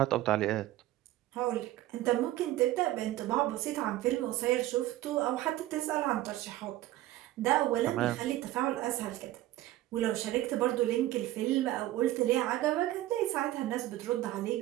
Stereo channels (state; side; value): quieter; left; 15.2 dB